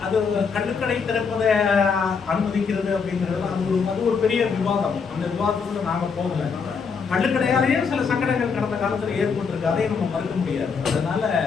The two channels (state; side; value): quieter; right; 5.6 dB